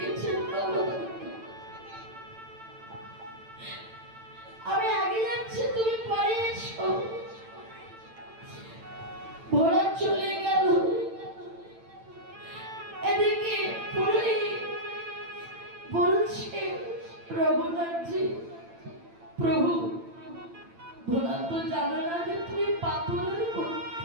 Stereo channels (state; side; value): late; left; 8.9 ms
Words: বাবা? আমি আগে যাচ্ছি, তুমি পরে এসো। ভোলা চলে গেল। এদিকে পুরোহিত বলছে, রঘুনাথজি প্রভু, ভোলা তো জানো না যে তুমি পাথরের